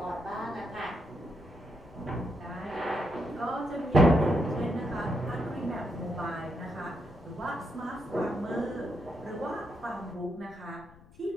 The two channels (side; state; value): left; noise; rumble, 23 dB below the sound